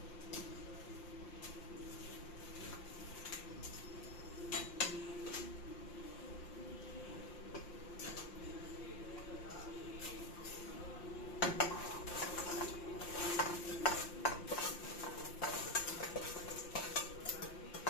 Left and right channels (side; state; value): right; late; 5.7 ms